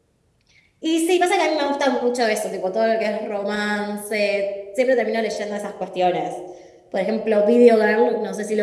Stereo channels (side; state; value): both; identical; correlation 1.00